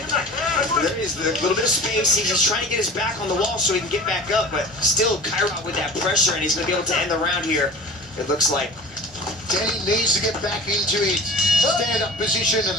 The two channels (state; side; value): normal; both; correlation 0.39